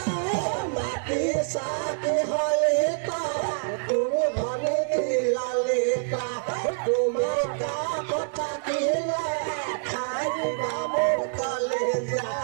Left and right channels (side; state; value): left; silent; digital silence